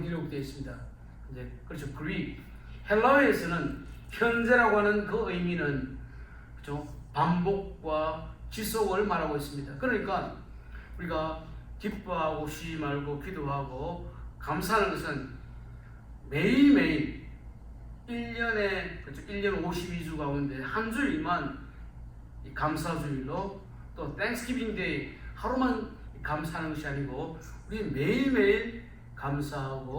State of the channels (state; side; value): identical; both; correlation 1.00